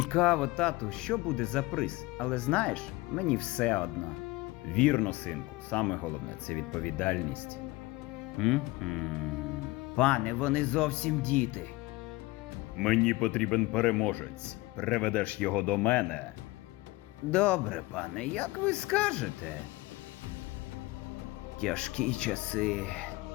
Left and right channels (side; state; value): right; quieter; 20.8 dB